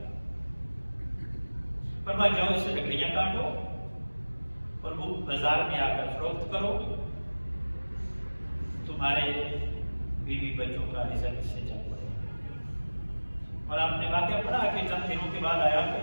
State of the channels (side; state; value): both; inverted; correlation -1.00